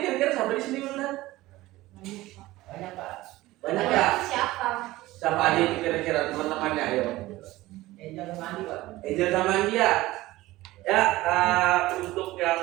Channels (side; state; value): left; quieter; 17.9 dB